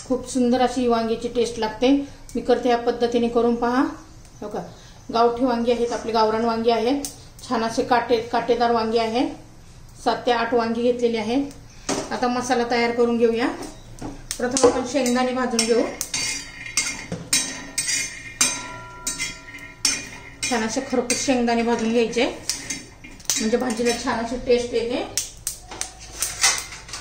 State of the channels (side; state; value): both; identical; correlation 1.00